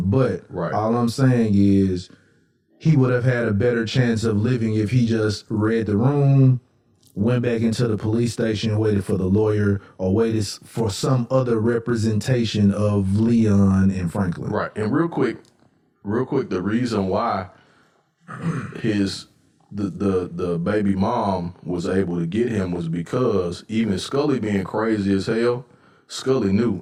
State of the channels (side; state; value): both; identical; correlation 1.00